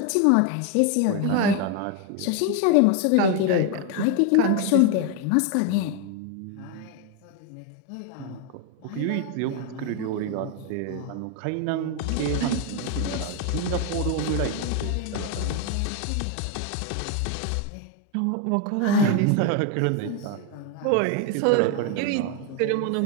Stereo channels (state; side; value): different; both; correlation 0.01